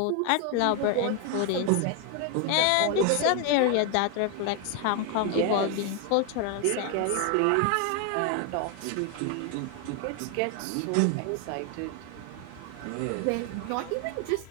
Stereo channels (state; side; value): different; both; correlation 0.01